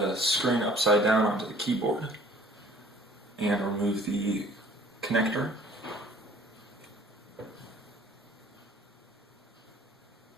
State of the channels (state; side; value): normal; both; correlation 0.53